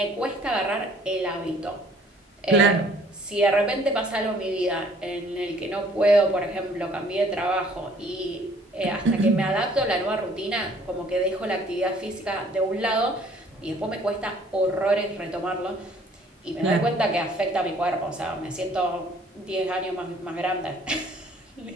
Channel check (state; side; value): normal; both; correlation 0.58